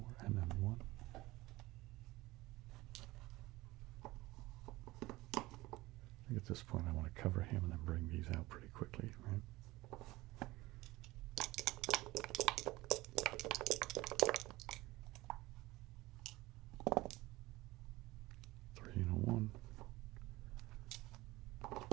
and then 1. I think at this point I want to cover him and then bring these out pretty quickly, right?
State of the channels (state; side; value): quieter; left; 19.5 dB